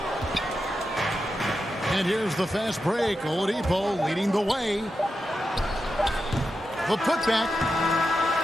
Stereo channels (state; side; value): normal; both; correlation 0.89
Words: And here's the fast break. Oladipo leading the way. a putback.